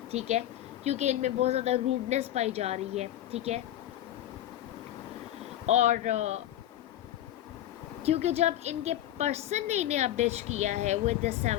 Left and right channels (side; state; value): right; quieter; 12.7 dB